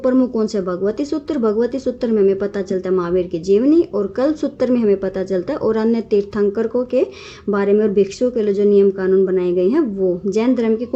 कौन से, भगवती सूत्र। भगवती सूत्र में हमें पता चलता है महावीर की जीवनी, और कल्प सूत्र में हमें पता चलता है और अन्य तीर्थंकरों के बारे में और भिक्षुओं के लिए जो नियम कानून बनाए गए हैं वो। जैन धर्म की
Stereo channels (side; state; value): both; identical; correlation 1.00